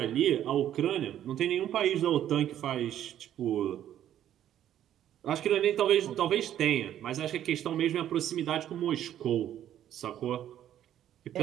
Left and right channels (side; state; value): left; quieter; 11.2 dB